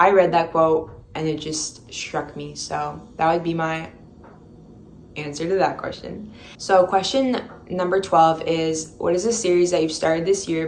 read that quote and it just struck me. So that would be my answer to that question. So question number 12 is, what is a series that you've started this year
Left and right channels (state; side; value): identical; both; correlation 1.00